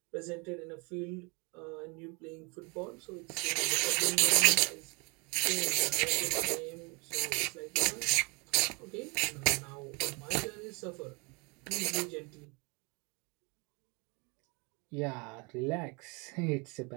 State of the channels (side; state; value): left; quieter; 28.4 dB